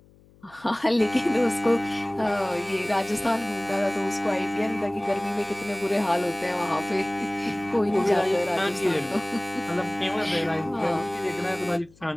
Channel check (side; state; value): left; noise; hum, 28 dB below the sound